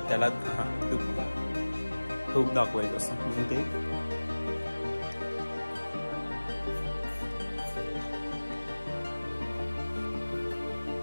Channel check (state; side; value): inverted; both; correlation -1.00